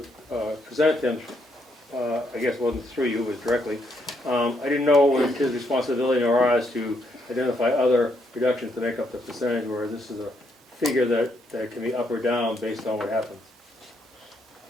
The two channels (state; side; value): normal; both; correlation 0.75